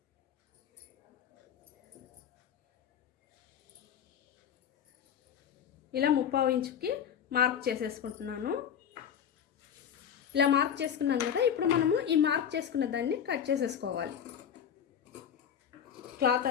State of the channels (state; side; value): quieter; right; 8.5 dB